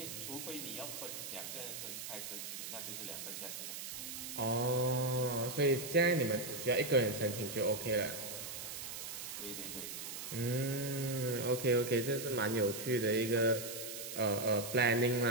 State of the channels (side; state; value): right; noise; hiss, 7 dB below the sound